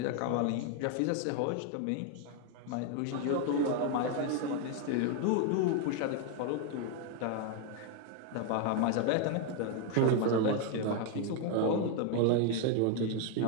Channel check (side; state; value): both; different; correlation 0.01